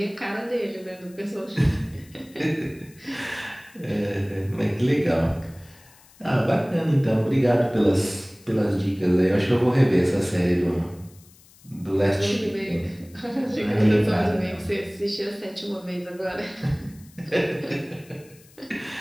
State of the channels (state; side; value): noise; left; hiss, 26 dB below the sound